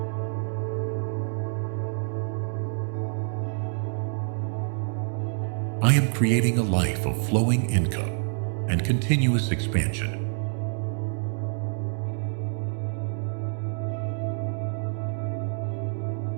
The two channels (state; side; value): silent; left; 60 dB below the other